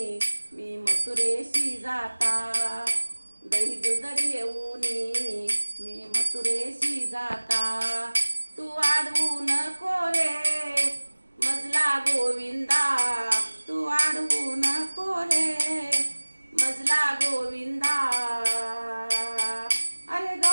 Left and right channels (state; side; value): inverted; both; correlation -1.00